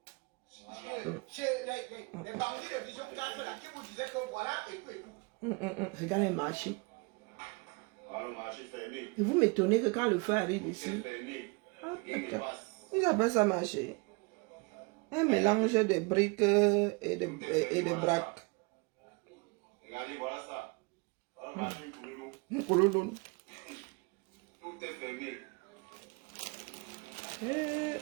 Les bandits de Vision 4 là, qui vous disaient que voilà et tout. Regarde les marchés. Le marché fermé. Et vous m'étonnez que quand le feu arrive ici, ils appellent ça marché. Un mélange de briques et de braques. Regardez, voilà ça. Le marché Koulouloun. tout est fermé.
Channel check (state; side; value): quieter; left; 29.2 dB